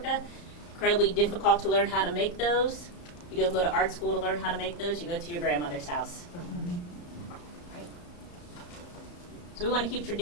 Incredibly difficult to learn how to make those. You don't go to art school to learn how to make those, you go to your grandmother's house. So we want to keep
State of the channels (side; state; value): right; late; 34 ms